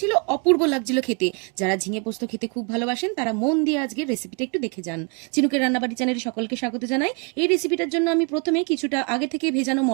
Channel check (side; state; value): left; quieter; 34.1 dB